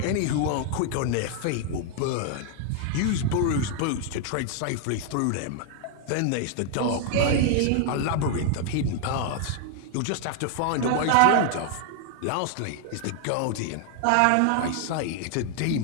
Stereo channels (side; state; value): both; different; correlation 0.00